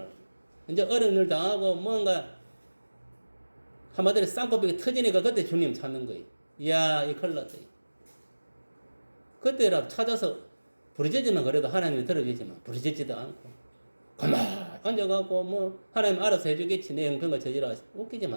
이제 어려운 일 당하고 뭔가 한마디로 쌍꺼풀이 터지니까 그때 주님 찾는 거예요. 이야 이 큰일 났다. 그때라도 찾아서 부르짖으면 그래도 하나님이 들어주지만 부르짖지도 않고 가만히 앉아갖고 뭐 하나님 알아서 해주겠지 내 형편과 저지라 웃기지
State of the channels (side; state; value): both; inverted; correlation -1.00